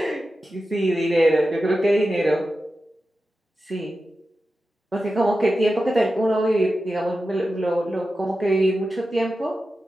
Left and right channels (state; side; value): normal; both; correlation 0.92